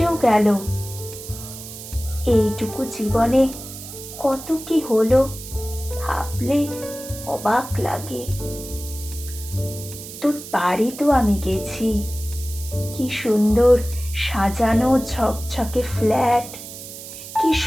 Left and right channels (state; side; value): noise; right; hiss, 12 dB below the sound